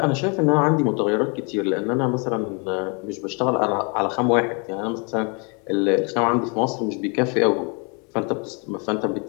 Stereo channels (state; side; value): quieter; right; 34.6 dB